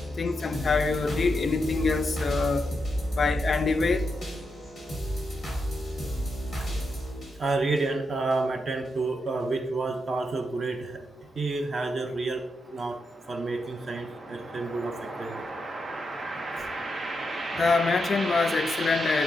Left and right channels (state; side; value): normal; both; correlation 0.84